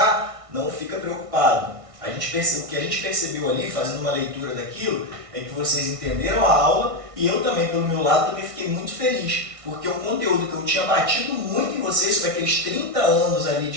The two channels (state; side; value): late; left; 1.6 ms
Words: não fica preocupado. O que a gente percebeu ali, fazendo uma leitura daquilo, é que vocês entenderam a aula e eu também, pelo meu lado, também fiquei muito feliz, porque o conteúdo que eu tinha batido muito em vocês sobre aqueles 30 anos ali